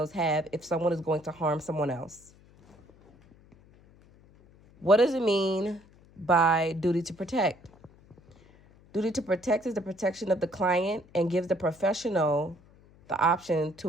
have if someone is going to harm someone else. What does it mean by duty to protect? Duty to protect is the protection of the client and gives the professional the option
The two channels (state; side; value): noise; left; hum, 27 dB below the sound